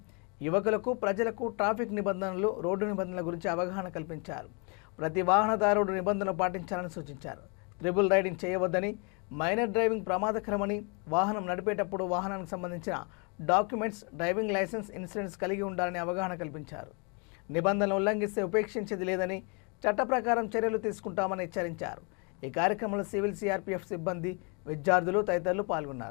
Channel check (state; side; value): quieter; right; 34.2 dB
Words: యువకులకు, ప్రజలకు ట్రాఫిక్ నిబంధనలు, రోడ్డు నిబంధనల గురించి అవగాహన కల్పించారు. ప్రతి వాహనదారుడు నిబంధనలు పాటించాలని సూచించారు. ట్రిపుల్ రైడింగ్ చేయవద్దని, మైనర్ డ్రైవింగ్ ప్రమాదకరమని, వాహనం నడిపేటప్పుడు వాహనానికి సంబంధించిన డాక్యుమెంట్స్, డ్రైవింగ్ లైసెన్స్, ఇన్సూరెన్స్ కలిగి ఉండాలని అవగాహన కల్పించారు. నిబంధనలు ఉల్లంఘిస్తే ఉపేక్షించేది లేదని, చట్ట ప్రకారం చర్యలు తీసుకుంటామని హెచ్చరించారు. ఈ కార్యక్రమంలో సివిల్ సిఆర్పీఎఫ్ సిబ్బంది, విద్యార్థులు తదితరులు